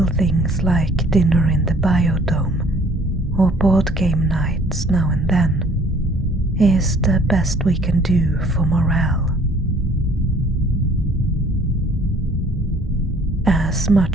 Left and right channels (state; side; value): normal; both; correlation 0.56